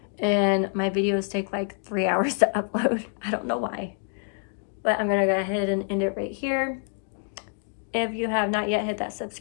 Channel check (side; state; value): right; silent; 55 dB below the other